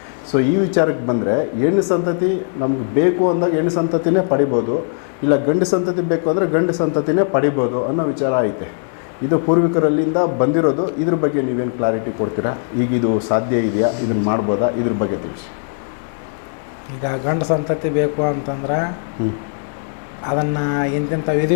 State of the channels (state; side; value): silent; right; digital silence